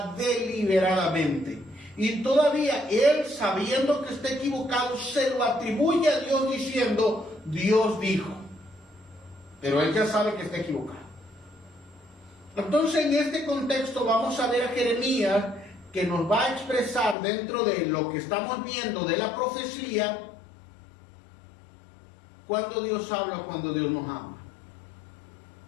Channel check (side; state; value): right; drops out; at 17.2 s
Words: deliberadamente y todavía él, sabiendo que está equivocado, se lo atribuye a Dios diciendo, Dios dijo. Pero él ya sabe que está equivocado. Entonces, en este contexto vamos a ver a Jeremías, que nos va a expresar dentro de lo que estamos viendo de la profecía, cuando Dios habla o cuando Dios nos habla.